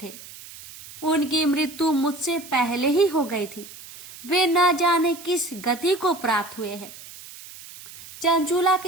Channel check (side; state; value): right; noise; hiss, 17 dB below the sound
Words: थे। उनकी मृत्यु मुझसे पहले ही हो गई थी। वे न जाने किस गति को प्राप्त हुए हैं। चंचूला